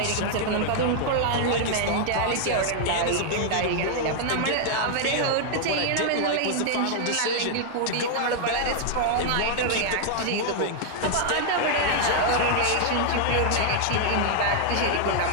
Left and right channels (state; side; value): different; both; correlation -0.01